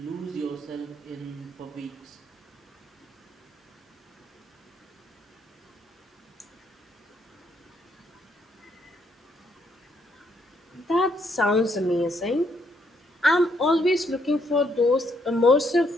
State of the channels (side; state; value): both; normal; correlation 0.73